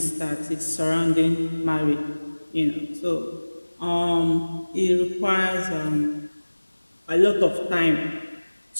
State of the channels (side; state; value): both; inverted; correlation -1.00